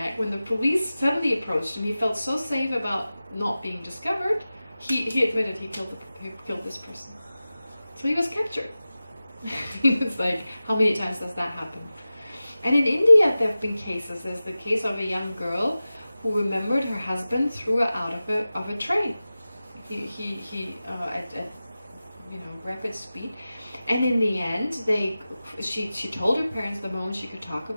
when the police suddenly approached him. He felt so safe about not being discovered. He admitted he killed this person. So he was captured. It's like, how many times does that happen? And in India, there have been cases. There's the case of a young girl who remembered her husband threw her out of a train. He at rapid speed, and in the end, she told her parents the moment she could talk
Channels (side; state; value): both; inverted; correlation -0.96